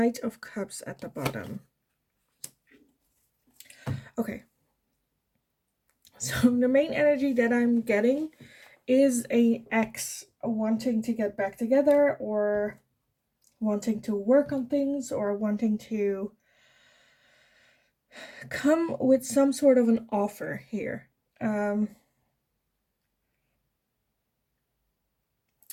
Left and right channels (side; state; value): both; identical; correlation 1.00